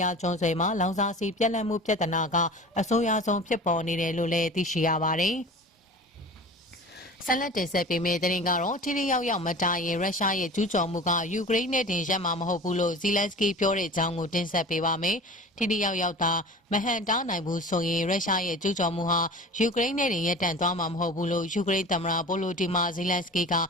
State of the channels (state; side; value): normal; both; correlation 0.38